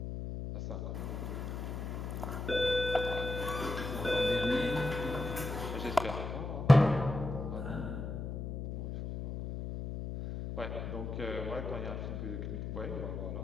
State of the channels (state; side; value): noise; left; hum, 5 dB below the sound